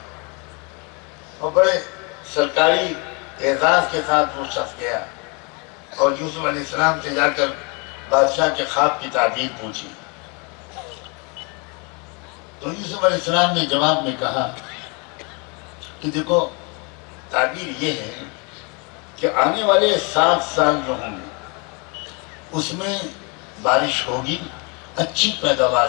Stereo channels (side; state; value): right; quieter; 32.0 dB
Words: اور بڑے سرکاری اعزاز کے ساتھ وہ شخص گیا اور یوسف علیہ السلام سے جا کر بادشاہ کے خواب کی تعبیر پوچھی۔ تو یوسف علیہ السلام نے جواب میں کہا کہ دیکھو تعبیر یہ ہے کہ آنے والے 7 سال جو ہوں گے اس میں بارش ہوگی، اچھی پیداوار